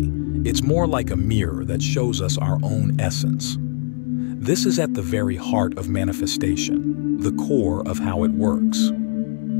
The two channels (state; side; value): silent; right; digital silence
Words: It's more like a mirror that shows us our own essence. This is at the very heart of manifestation, the core of how it works.